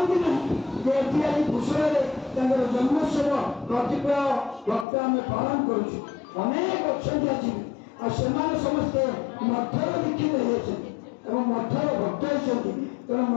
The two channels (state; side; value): drops out; right; at 4.9 s